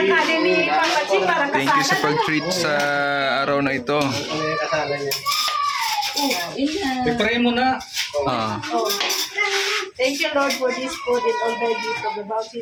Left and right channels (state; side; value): identical; both; correlation 1.00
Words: kanin ni Papa Chi, parang Thank you sa kasana. pag-treat sa araw na ito. I-pray mo na. Ah. Thank you, Lord, for this food and all thy gift of the